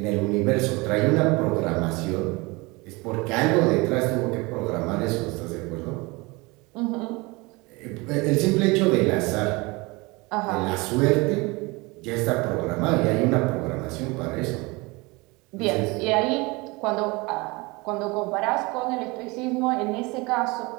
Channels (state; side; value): quieter; left; 25.0 dB